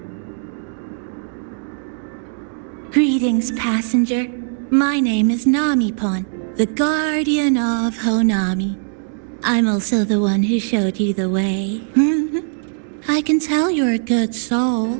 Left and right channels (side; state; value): left; silent; digital silence